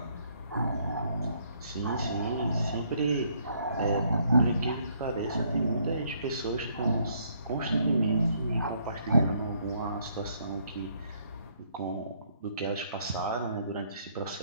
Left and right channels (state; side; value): inverted; both; correlation -0.68